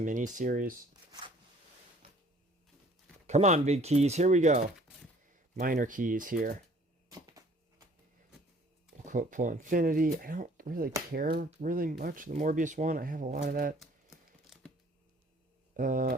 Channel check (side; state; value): both; normal; correlation 0.55